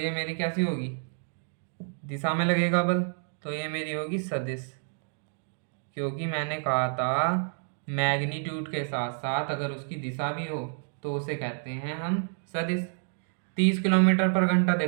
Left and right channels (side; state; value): left; silent; 56 dB below the other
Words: मेरी कैसी होगी? दिशा में लगेगा बल, तो ये मेरी होगी सदिश। क्योंकि मैंने कहा था मैग्नीट्यूड के साथ साथ अगर उसकी दिशा भी हो तो उसे कहते हैं हम सदिश। 30 किलोमीटर पर घंटा